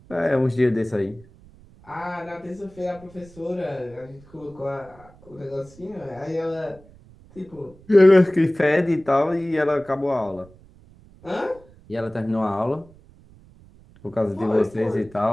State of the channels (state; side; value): noise; right; rumble, 25 dB below the sound